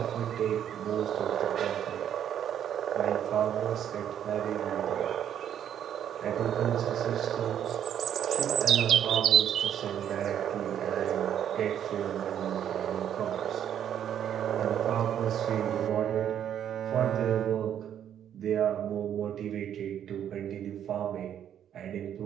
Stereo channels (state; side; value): quieter; left; 9.8 dB